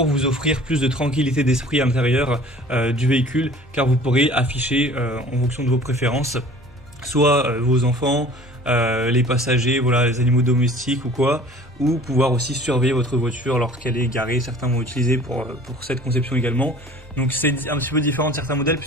vous offrir plus de tranquillité d'esprit à l'intérieur du véhicule, car vous pourrez afficher en fonction de vos préférences, soit vos enfants, les passagers, voilà, les animaux domestiques ou quoi, ou pouvoir aussi surveiller votre voiture lorsqu'elle est garée. Certains vont utiliser pour cette conception également. Donc c'est un petit peu différent de certains modèles,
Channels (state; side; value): normal; both; correlation 0.47